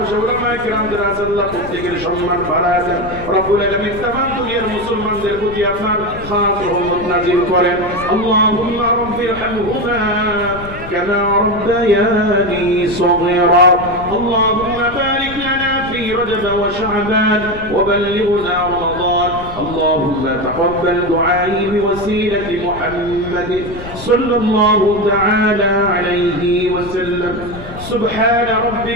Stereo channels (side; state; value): left; noise; rumble, 13 dB below the sound